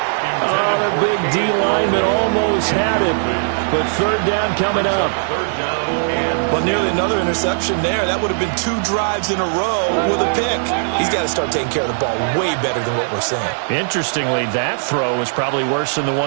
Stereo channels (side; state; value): left; silent; 65 dB below the other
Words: Oh, the big D lineman almost had it. But 3rd down coming up. But nearly another interception there. That would have been 2 drives in a row with a pick. He's got to start taking care of the ball way better than what we're seeing. Interestingly, that throw was probably worse than the